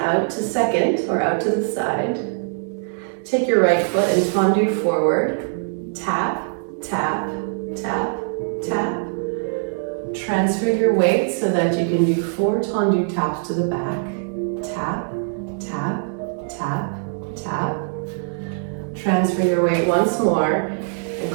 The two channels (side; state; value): left; silent; digital silence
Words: to 2nd or out to the side. Take your right foot and tendu forward. Tap, tap, tap, tap. Transfer your weight so that you can do 4 tendu taps to the back. Tap, tap, tap, tap. Transfer your weight once more and